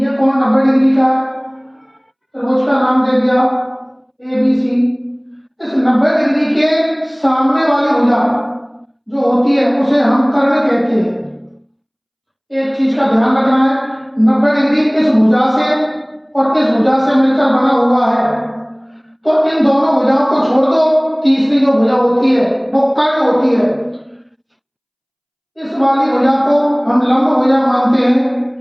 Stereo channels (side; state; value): both; identical; correlation 1.00